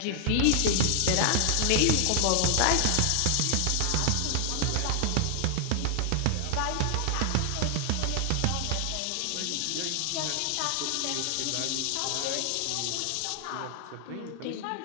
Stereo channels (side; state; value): both; different; correlation 0.00